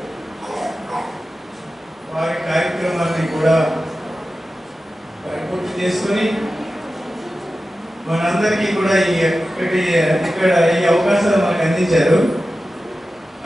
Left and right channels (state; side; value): normal; both; correlation 0.94